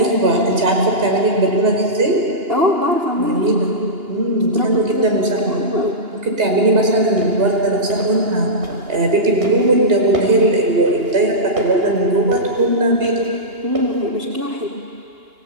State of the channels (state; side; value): late; left; 2.8 ms